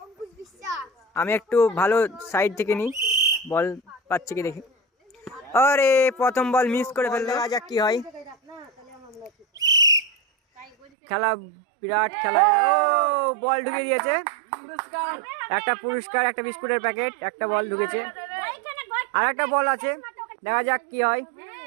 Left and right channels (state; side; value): drops out; left; at 10.8 s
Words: আমি একটু ভালো সাইড থেকে নিই, বল পাচ্ছি কি দেখি। আরে প্রথম বল মিস করে ফেললো, দেখা যাক কি হয়। খেলা বিরাট খেলা। ও বল ঢুকে দিয়েছে, একটা পুরস্কার, একটা বিস্কুটের প্যাকেট, একটা বল ঢুকেছে, আর একটা বল আছে, দেখা যাক কি হয়।